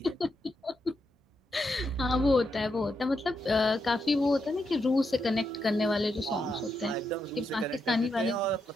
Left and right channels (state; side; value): normal; both; correlation 0.83